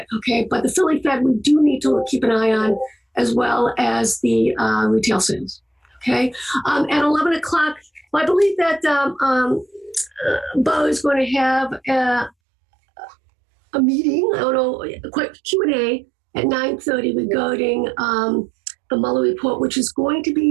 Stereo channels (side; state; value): left; drops out; at 12.3 s